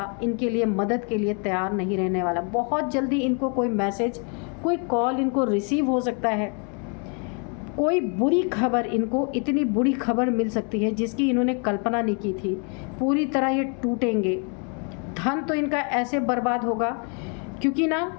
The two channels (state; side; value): quieter; right; 38.6 dB